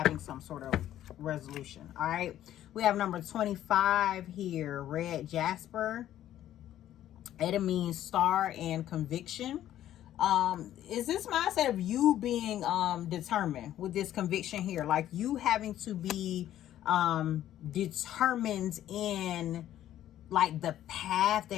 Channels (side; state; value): right; quieter; 12.2 dB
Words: some sort of resolution. All right, we have number 25 here, red jasper, It means star and conviction. Is this mindset of you being determined with this conviction here, like you having to be determined in like the path